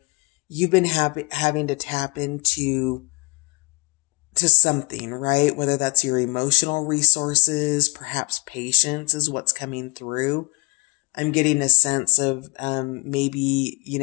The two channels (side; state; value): right; quieter; 28.1 dB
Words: you've been having to tap into something, right? Whether that's your emotional resources, perhaps patience is what's coming through. I'm getting a sense of maybe,